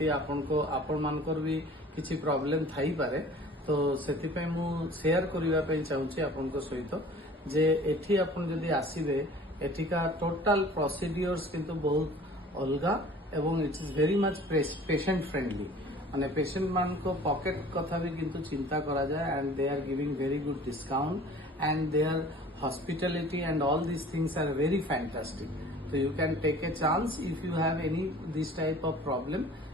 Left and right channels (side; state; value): both; normal; correlation 0.47